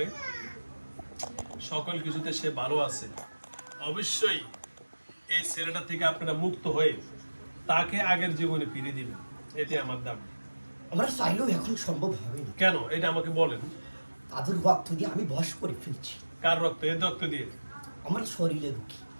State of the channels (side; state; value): both; inverted; correlation -1.00